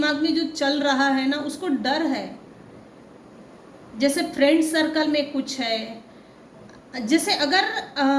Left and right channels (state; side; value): identical; both; correlation 1.00